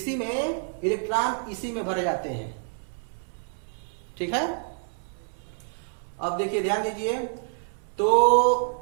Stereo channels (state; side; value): silent; left; 60 dB below the other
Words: में इलेक्ट्रॉन इसी में भरे जाते हैं। ठीक है, अब देखिए, ध्यान दीजिए, तो